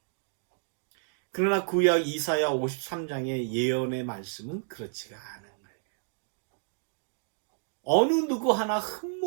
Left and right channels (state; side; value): silent; left; digital silence